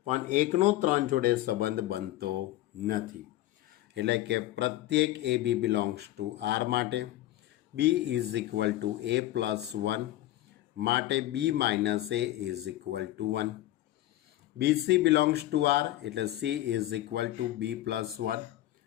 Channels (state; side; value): quieter; right; 15.1 dB